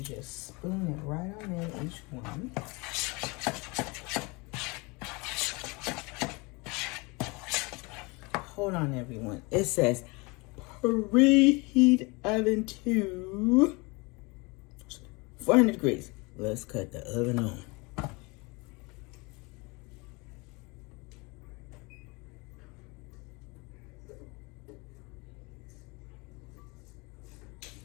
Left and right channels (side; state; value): right; quieter; 27.2 dB